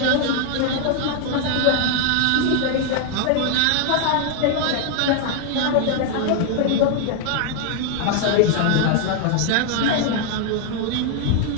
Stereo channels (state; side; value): different; both; correlation 0.00